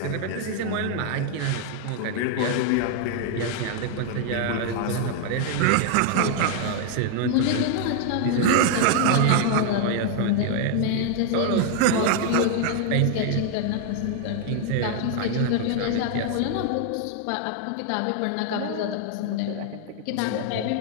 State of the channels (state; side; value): different; both; correlation 0.00